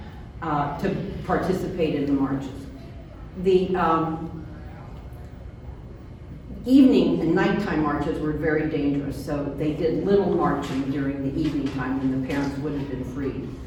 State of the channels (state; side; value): identical; both; correlation 1.00